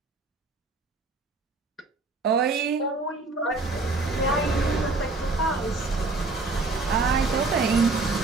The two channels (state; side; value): quieter; left; 3.5 dB